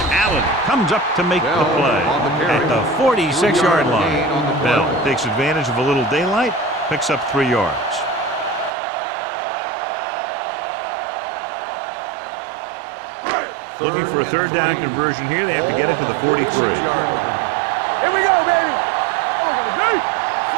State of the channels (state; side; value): drops out; left; at 8.7 s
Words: Allen comes up to make the play at the 46-yard line. Bell takes advantage of a little daylight, picks up 3 yards. Looking for a third down conversion here. They have to get it to the 43. Here we go, baby.